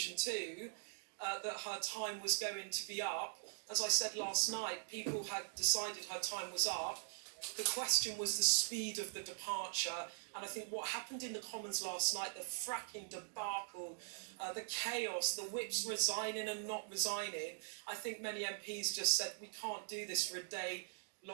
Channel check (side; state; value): left; silent; digital silence